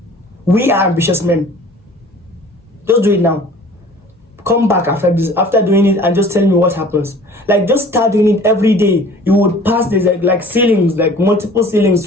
We are ambitious men. Just do it now. Come back after this, after doing it, and just tell me what happens. Like, just start doing it every day. You would pass this like ceilings, like multiple ceilings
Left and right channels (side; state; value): both; normal; correlation 0.48